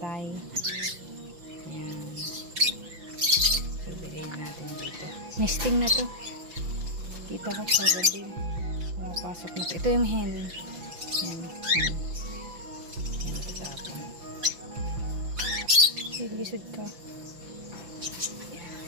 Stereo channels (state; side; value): late; left; 5.8 ms